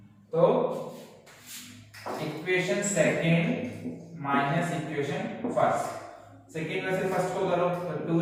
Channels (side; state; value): both; identical; correlation 1.00